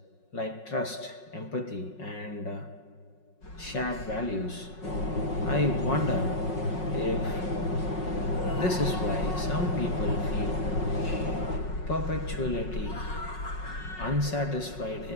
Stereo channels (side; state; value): right; late; 5.5 ms